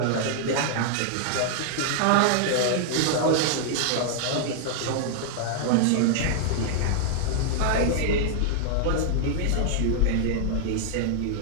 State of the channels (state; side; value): different; both; correlation -0.01